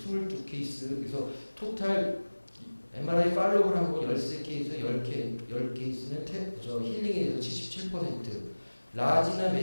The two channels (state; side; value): inverted; both; correlation -1.00